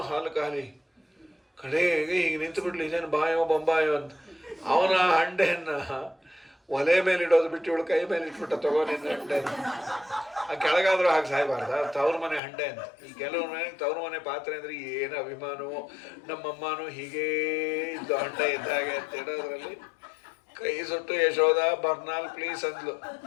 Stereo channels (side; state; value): right; drops out; at 12.4 s